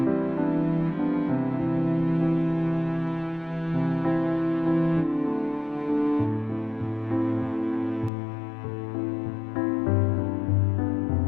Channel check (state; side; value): drops out; right; at 8.1 s